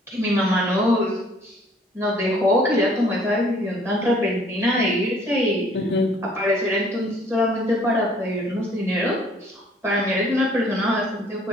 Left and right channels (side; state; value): both; normal; correlation 0.58